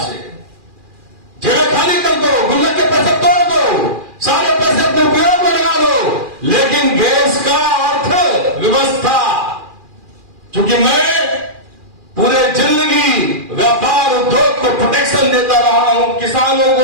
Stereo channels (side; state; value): left; late; 2.4 ms